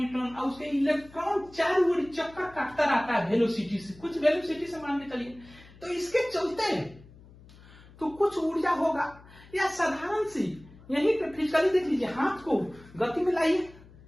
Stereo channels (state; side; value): noise; left; hum, 22 dB below the sound